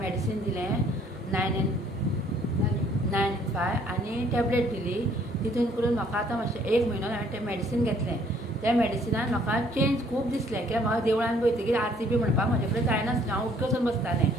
दिलें 995 आनी टॅबलेट दिली. तितून करून म्हाका आतां मातशें 1 म्हयनो हांवें तें मॅडिसीन घेतलें. त्या मॅडिसिनान म्हाका चेंज खूब दिसलें, कित्याक म्हाका देवळान वयतकीर आरती बी म्हणपाक म्हाजे कडेन जायनासलें. हांव उठ्ठ वचून बसतालें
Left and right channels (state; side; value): normal; both; correlation 0.61